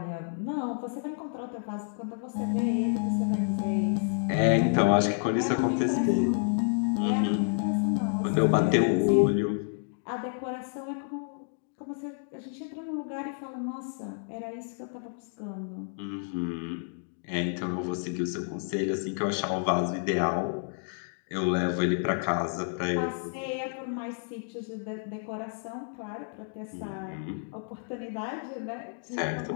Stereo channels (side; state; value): right; silent; digital silence